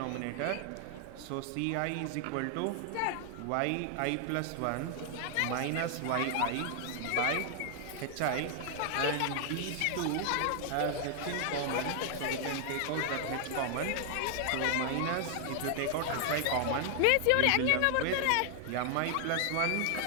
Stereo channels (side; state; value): both; different; correlation 0.00